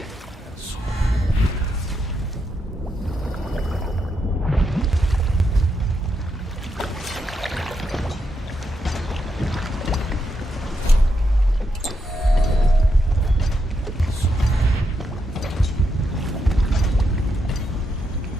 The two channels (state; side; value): normal; both; correlation 0.82